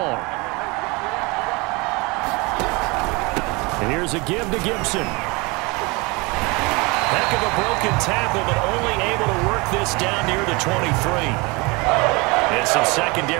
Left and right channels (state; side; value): quieter; left; 26.6 dB